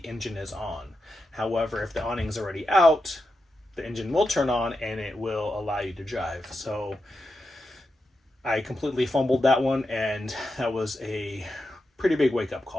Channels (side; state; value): both; normal; correlation 0.88